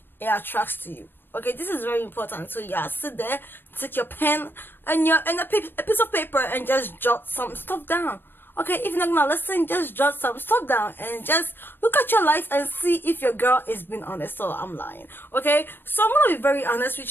it attracts to you. Okay, this is very important. So yeah, sit there, take your pen and a piece of paper and just jot some stuff down. Okay, if you're not gonna listen, just jot some stuff down and just look at your life and see if your girl is being honest. So I'm lying. Okay, so I'm gonna be very honest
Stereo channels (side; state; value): right; late; 0.097 ms